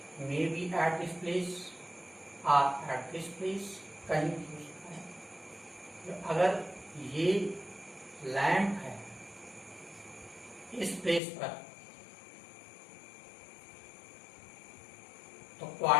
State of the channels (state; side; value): drops out; right; at 11.2 s